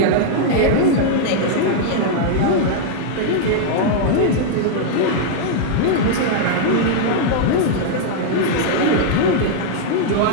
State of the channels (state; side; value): different; both; correlation -0.01